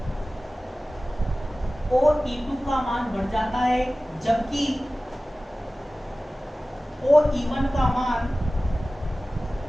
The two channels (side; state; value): both; normal; correlation 0.97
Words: OE2 का मान बढ़ जाता है, जबकि OE1 का मान